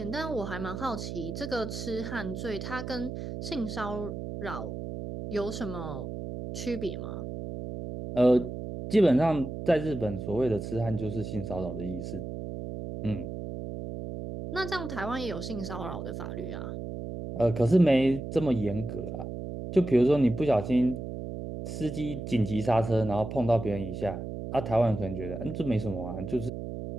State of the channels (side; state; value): right; noise; hum, 7 dB below the sound